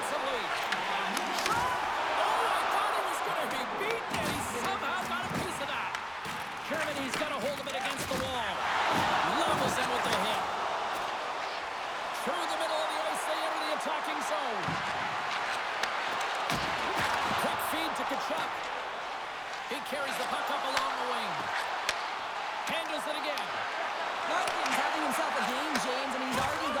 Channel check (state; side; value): identical; both; correlation 1.00